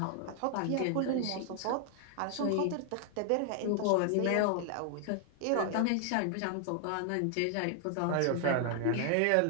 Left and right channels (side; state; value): both; different; correlation 0.00